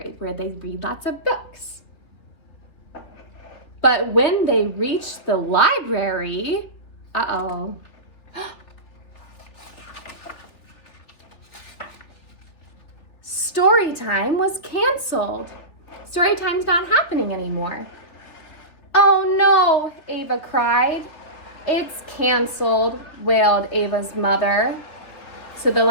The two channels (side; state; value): right; late; 3.5 ms